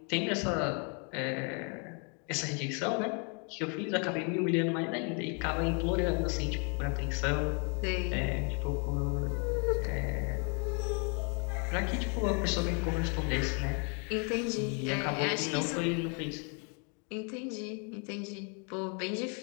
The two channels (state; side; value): quieter; right; 37.5 dB